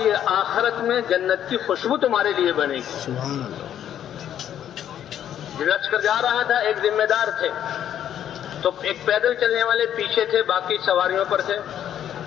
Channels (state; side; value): quieter; right; 10.3 dB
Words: یہ آخرت میں جنت کی خوشبو تمہارے لیے بنے گی۔ سبحان اللہ۔ لشکر جا رہا تھا، ایک ذمہ دار تھے، تو ایک پیدل چلنے والے پیچھے تھے، باقی سواریوں پر تھے۔